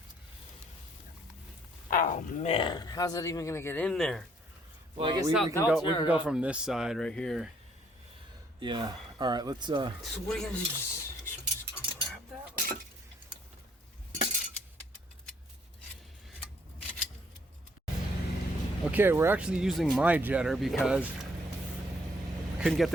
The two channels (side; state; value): both; normal; correlation 0.66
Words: Oh man, how's that even gonna get in there? Well, I guess we can go from this side right here. Yeah. All right, let's. So what are you gonna do? Just grab that? Okay, we're actually using my jetter because I couldn't get